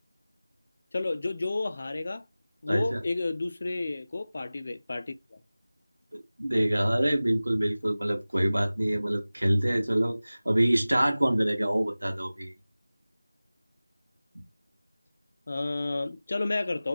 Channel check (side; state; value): both; inverted; correlation -0.98